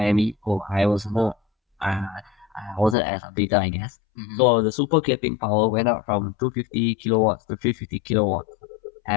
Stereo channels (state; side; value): drops out; right; at 3.0 s